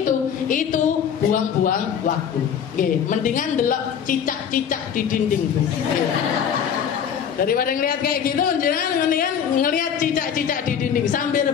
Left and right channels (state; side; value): quieter; right; 8.1 dB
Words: buang-buang waktu. Mendingan delok cicak-cicak di dinding. Daripada ngelihat kayak gitu, jangan mendingan ngelihat cicak-cicak di dinding sambil